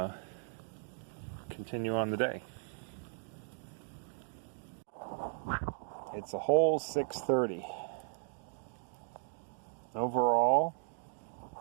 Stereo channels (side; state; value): left; silent; digital silence